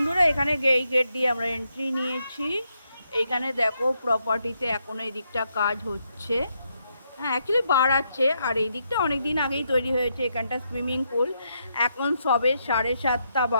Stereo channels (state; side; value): inverted; both; correlation -0.79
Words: এখানে এই গেট দিয়ে আমরা এন্ট্রি নিয়েছি। এইখানে দেখো প্রপার্টিতে এখনো এই দিকটা কাজ হচ্ছে। হ্যাঁ, অ্যাকচুয়ালি বাড়াচ্ছে। আর এই দিকটা অনেক দিন আগেই তৈরি হয়েছে। এখানটা সুইমিং পুল। এখন সবে 7:30